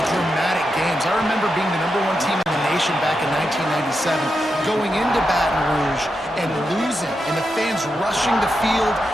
dramatic games. I remember being the #1 team in the nation back in 1997, going into Baton Rouge and losing, and the fans rushing the field,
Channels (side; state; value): both; normal; correlation 0.87